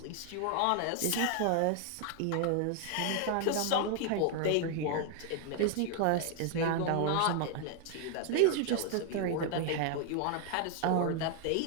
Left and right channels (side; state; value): both; different; correlation 0.00